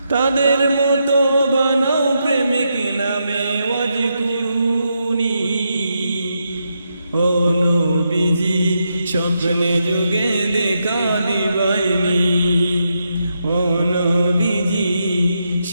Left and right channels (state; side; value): inverted; both; correlation -0.82